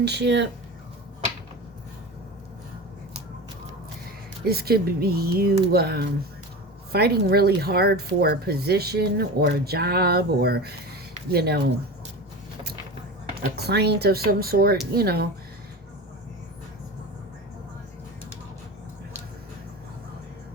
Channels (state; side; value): normal; both; correlation 0.29